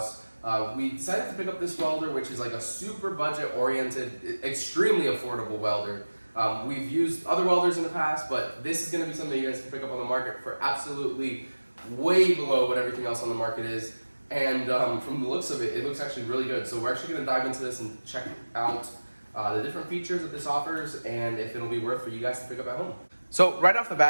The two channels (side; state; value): both; inverted; correlation -1.00